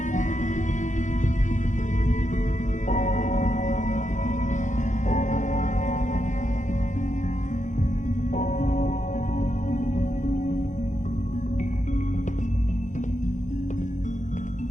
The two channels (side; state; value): right; late; 0.36 ms